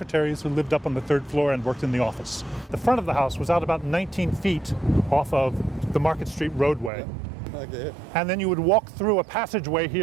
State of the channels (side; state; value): left; drops out; at 6.9 s